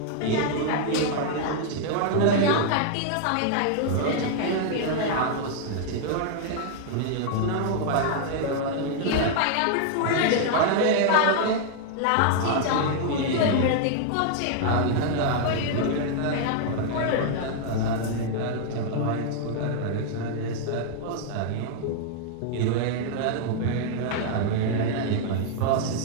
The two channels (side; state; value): both; different; correlation -0.01